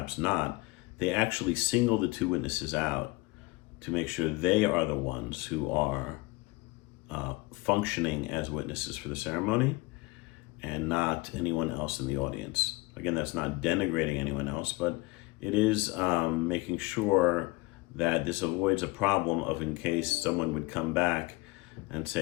not, they actually single the 2 witnesses out to make sure they are the ones who are functioning as witnesses for the ceremony and not anyone else in the audience. Again, that's not denigrating anyone else, but it is making sure that this avoids a problem of in case someone would come back and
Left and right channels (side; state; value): right; quieter; 22.4 dB